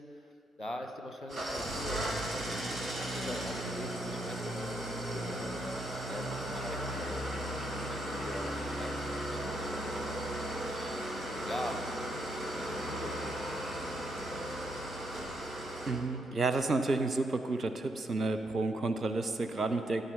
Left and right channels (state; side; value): normal; both; correlation 0.77